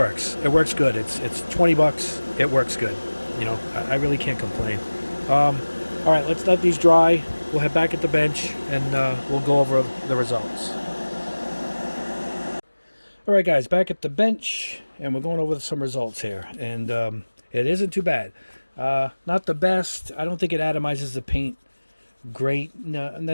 It works good. It's 20 bucks. It works good. You know, I really can't complain. All right, let's let these dry. We'll head back at the bench, and we'll go over the results. All right, guys, back at the bench, and we're going over some results here. And it isn't too bad. Not the best. I don't think it atomizes the paint great. No, and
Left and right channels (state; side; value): inverted; both; correlation -1.00